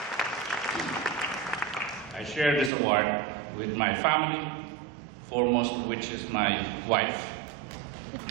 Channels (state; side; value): drops out; left; at 2.7 s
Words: I share this award with my family, foremost of which is my wife.